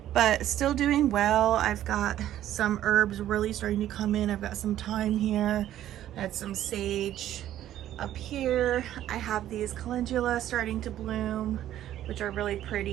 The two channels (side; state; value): left; quieter; 12.3 dB